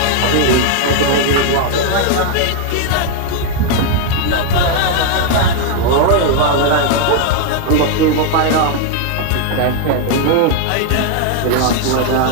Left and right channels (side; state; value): both; different; correlation 0.00